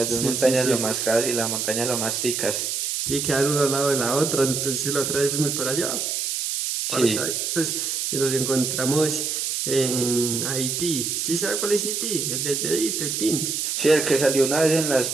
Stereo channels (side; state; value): right; noise; hiss, 1 dB below the sound